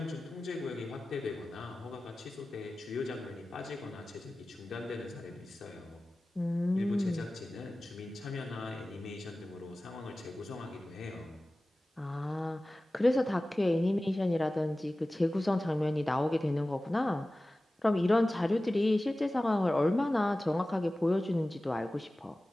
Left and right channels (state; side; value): normal; both; correlation 0.97